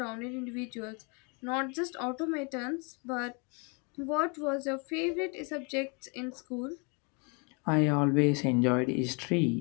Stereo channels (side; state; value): right; quieter; 33.5 dB